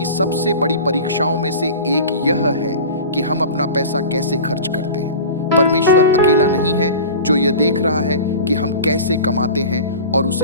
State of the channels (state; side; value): inverted; both; correlation -0.35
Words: सबसे बड़ी परीक्षाओं में से एक यह है कि हम अपना पैसा कैसे खर्च करते हैं। परमेश्वर अकेला नहीं है जो यह देख रहा है कि हम कैसे कमाते हैं और